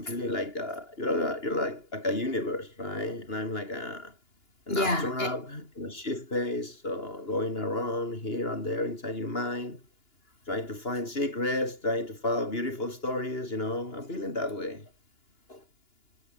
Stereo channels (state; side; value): late; right; 2.9 ms